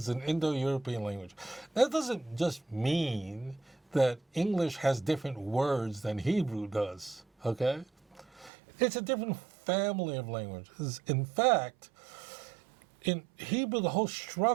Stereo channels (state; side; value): drops out; left; at 8.5 s